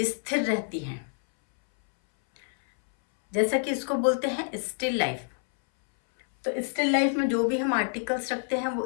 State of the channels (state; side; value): silent; right; 60 dB below the other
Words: रहती हैं, जैसा कि इसको बोलते हैं स्टिल लाइफ। तो स्टिल लाइफ में जो भी हम आर्टिकल्स रखते हैं वो